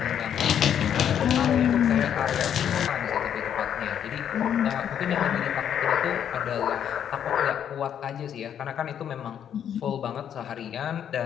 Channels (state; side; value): quieter; right; 9.2 dB